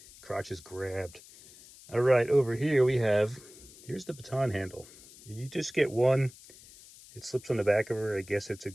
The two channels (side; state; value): left; noise; hiss, 21 dB below the sound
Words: Crotch is grabbed. All right, over here we have, here's the baton handle. You just get one. It slips on the back of her. I guess it's a